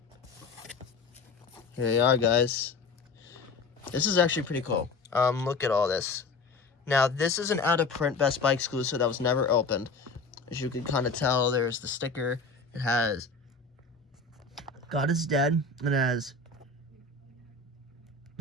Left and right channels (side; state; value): right; quieter; 4.1 dB